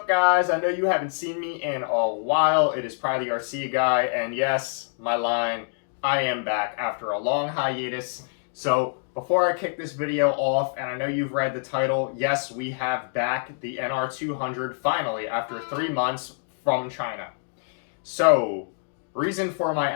guys? I know you haven't seen me in a while. It is Probably the Ruifeiya guy, and yes, my line, I am back after a long hiatus. So before I kick this video off, and I know you've read the title, yes, we have back the NR-200 finally after 3 months from China. So, reason for my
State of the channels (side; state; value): right; silent; digital silence